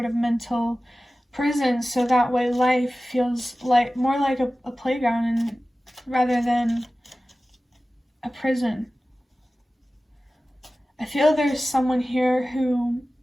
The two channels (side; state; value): both; normal; correlation 0.96